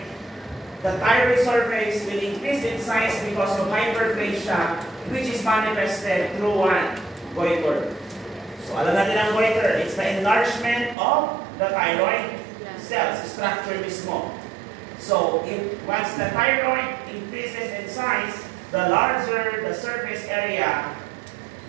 surface will increase in size because of hyperplasia, which is manifested through what? Goiter. So alam natin ang goiter, it's the enlargement of the thyroid cells, structure mismo. So once the thyroid increases in size, the larger the surface area,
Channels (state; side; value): drops out; left; at 11.0 s